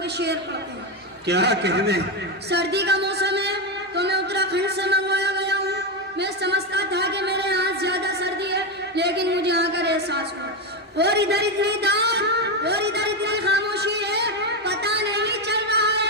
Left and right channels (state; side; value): normal; both; correlation 0.10